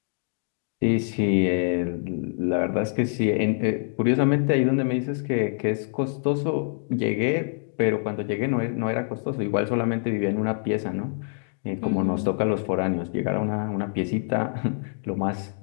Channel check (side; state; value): right; silent; digital silence